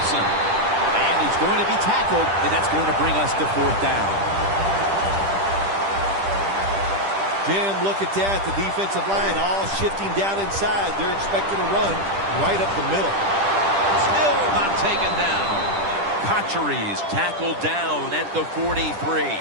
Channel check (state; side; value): late; left; 10 ms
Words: And he's going to be tackled, and that's going to bring us to fourth down. Jim, look at that. The defensive line all shifting down inside. They're expecting a run right up the middle. Still not taken down. Cotcheries tackled down at the 43.